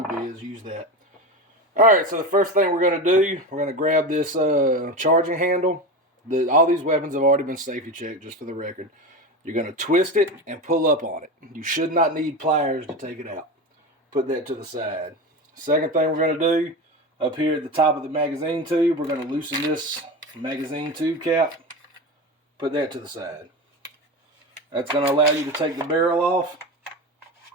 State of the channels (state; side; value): normal; both; correlation 0.23